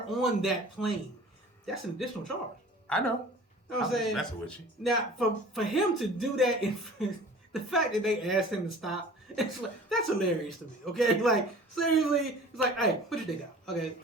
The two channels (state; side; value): normal; both; correlation 0.44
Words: on that plane, that's an additional charge. I know. You know what I'm saying? That's with you. Now, for him to do that, the fact that they asked him to stop, it's like, that's hilarious to me. Okay, like seriously, it's like, hey, put your dick out. Okay,